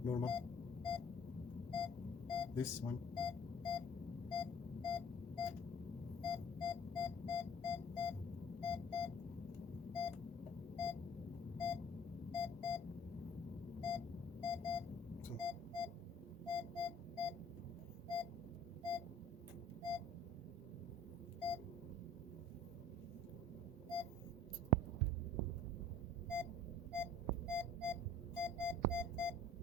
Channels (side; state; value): both; normal; correlation 0.51